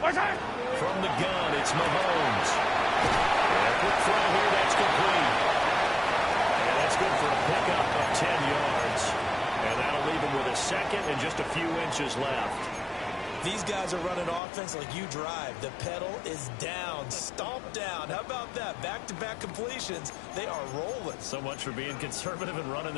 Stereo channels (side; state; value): right; drops out; at 14.4 s